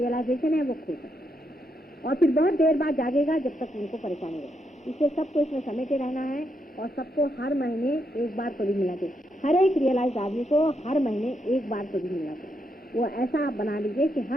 है वो खो जाए और फिर बहुत देर बाद जागेगा जब तक उनको परेशानी हो। इसलिए सबको इसमें समेटे रहना है और सबको हर महीने एक बार तो भी मिलना चाहिए। हर एक रियलाइज आदमी को हर महीने एक बार तो भी मिलना चाहिए। वो ऐसा आप बना लीजिए कि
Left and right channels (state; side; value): normal; both; correlation 0.80